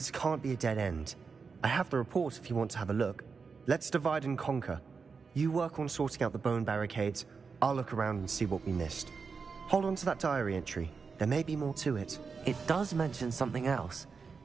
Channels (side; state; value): left; quieter; 5.2 dB